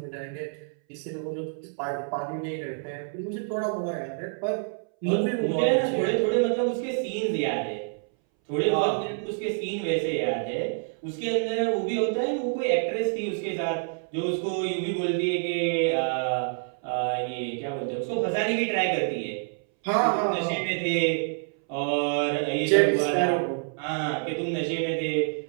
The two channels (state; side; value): silent; left; 60 dB below the other